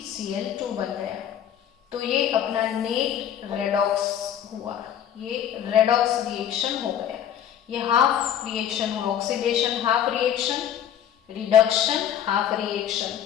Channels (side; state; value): right; quieter; 9.8 dB